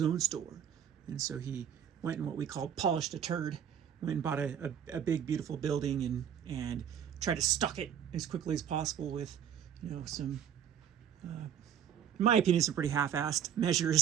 own store. And so he went and what we call polished a turd. Went and bought a big, beautiful building and tried to stock it as quickly as possible with, some, in my opinion, some pretty half-assed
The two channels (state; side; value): quieter; left; 8.9 dB